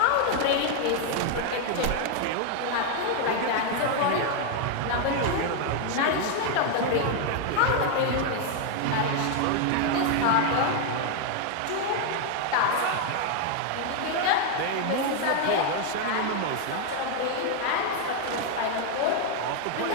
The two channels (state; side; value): different; both; correlation 0.01